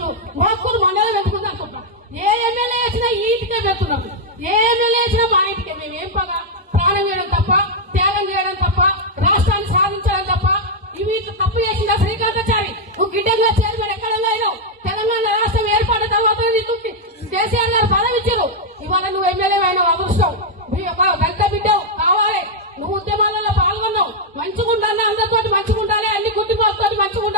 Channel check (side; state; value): both; normal; correlation -0.01